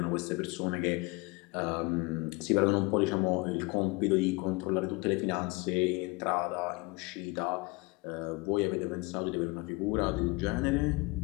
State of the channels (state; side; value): quieter; right; 25.3 dB